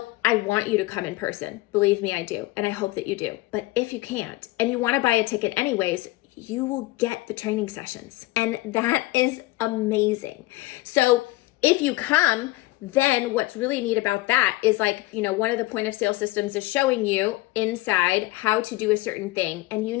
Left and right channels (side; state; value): right; quieter; 19.3 dB